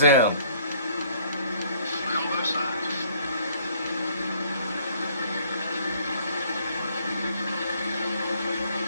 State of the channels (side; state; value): both; inverted; correlation -0.59